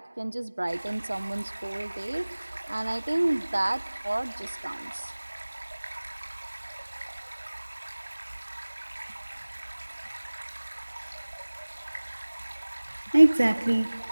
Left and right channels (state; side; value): inverted; both; correlation -1.00